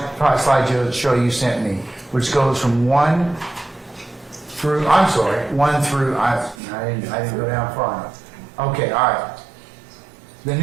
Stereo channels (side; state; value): left; drops out; at 6.6 s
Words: you sent me, which goes from 1 through, I didn't go down far enough. Okay, all right. The